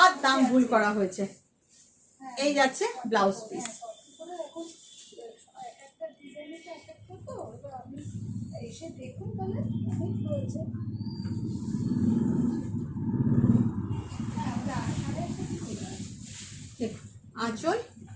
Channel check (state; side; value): identical; both; correlation 1.00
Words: দাম ভুল করা হয়েছে। এই যাচ্ছে ব্লাউজ পিস। আঁচল